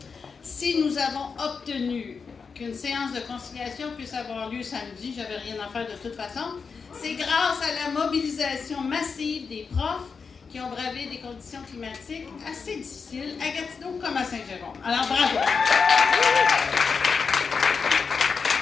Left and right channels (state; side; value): quieter; right; 5.4 dB